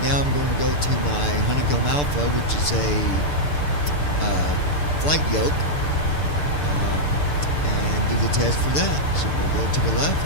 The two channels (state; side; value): late; right; 6.8 ms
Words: now I'm going to go to my Honeycomb Alpha, which is a flight yoke, and do the test for that. So we'll go to the